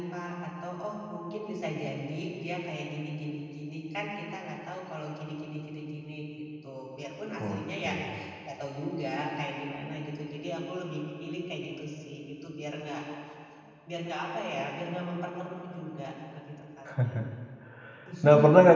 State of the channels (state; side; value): identical; both; correlation 1.00